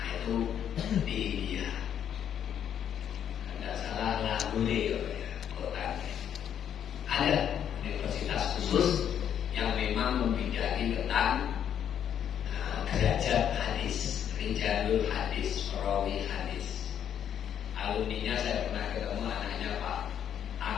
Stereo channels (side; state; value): right; quieter; 9.3 dB